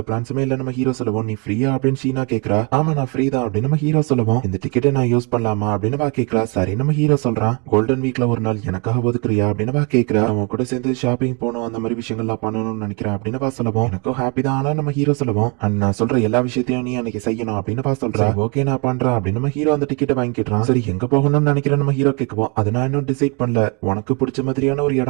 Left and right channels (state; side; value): quieter; left; 32.4 dB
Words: பிளான்ஸுமே இல்ல நம்ம ஹீரோ சொல்லுவோம். நீ ஃப்ரீயா அப்படின்னு ஷீனா கேக்குறா. ஆமா நான் ஃப்ரீ தான் அப்படின்னு நம்ம ஹீரோ சொல்லுவோம். இந்த டிக்கெட்டை நான் யூஸ் பண்ணலாமா அப்படின்னு வா கேக்குறா. சரி நம்ம ஹீரோ சொல்றான். கோல்டன் வீக்ல ஒரு நாள் எனக்காக ஒதுக்குறியா அப்படின்னு வா கேக்குறா. அவன் கூட சேர்ந்து ஷாப்பிங் போகணும், அந்த மாதிரி விஷயங்கள்லாம் பண்ணணும்னு நினைக்கிறேன் அப்படின்னு வா சொல்லுவோம். எனக்கும் ஹாப்பி தான், ஆனா நம்ம ஹீரோ சொல்லுவோம் அண்ட் நான் சொல்ற எல்லா விஷயத்தையும் நீ அன்னைக்கு செய்யணும் அப்படின்னு வா சொல்றா. ஓகே நான் பண்றேன் அப்படின்னு நம்ம ஹீரோ அந்த டிக்கெட்டை வாங்கிக்கிறான். சரி எங்க போகணும்னு நினைக்கிறேன் நம்ம ஹீரோ கேட்குவோம். அதை நான் இன்னும் டிசைட் பண்ணல, உனக்கு பிடிச்ச மாதிரியான ஒரு